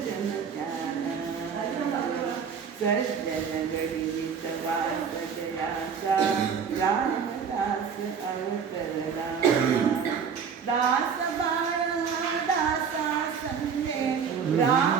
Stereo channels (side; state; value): left; quieter; 6.7 dB